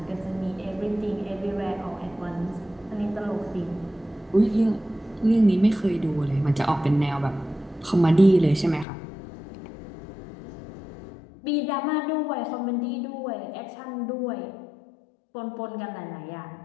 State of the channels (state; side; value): drops out; right; at 8.8 s